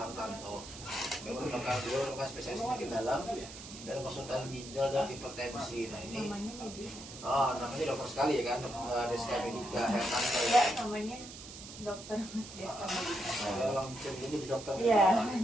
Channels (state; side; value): noise; right; hiss, 13 dB below the sound